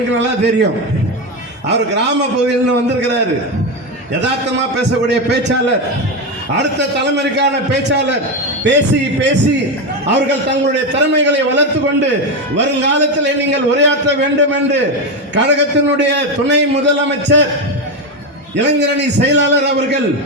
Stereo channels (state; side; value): normal; both; correlation 0.12